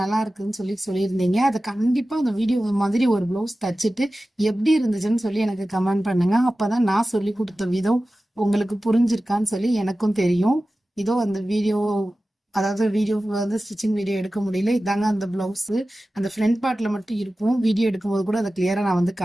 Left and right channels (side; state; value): both; normal; correlation 0.95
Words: நல்லா இருக்குன்னு சொல்லி சொல்லியிருந்தீங்க. அதை கண்டிப்பா அந்த வீடியோ மாதிரி ஒரு ப்ளவுஸ் தச்சுட்டு எப்படி இருந்துச்சுன்னு சொல்லி எனக்கு கமெண்ட் பண்ணுங்க. அப்பதான் நான் சொல்லி கொடுத்த விதம் உங்களுக்கு புரிஞ்சிருக்கான்னு சொல்லி எனக்கும் தெரியும். இதோ அந்த வீடியோ, அதாவது வீடியோ வந்து ஸ்டிச்சிங் வீடியோ எடுக்க முடியல. இதாங்க அந்த பிளவுஸ். அந்த ஃப்ரண்ட் பார்ட்ல மட்டும் இருக்கும். வீடியோ எடுக்கும்போது கூட அதை கிளியரா நான் வந்து